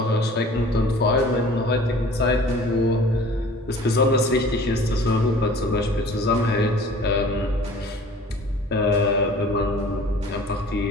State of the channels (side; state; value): both; normal; correlation 0.47